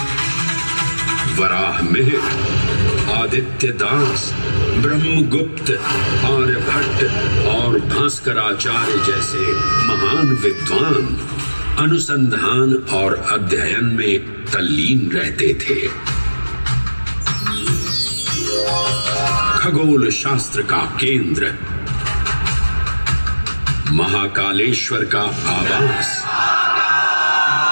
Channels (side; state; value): both; inverted; correlation -1.00